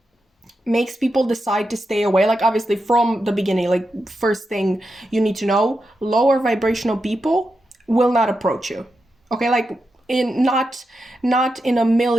makes people decide to stay away, like obviously from the beginning, like first thing you need to know, lower vibrational people will not approach you. Okay, like in not in a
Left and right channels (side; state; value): both; normal; correlation 0.87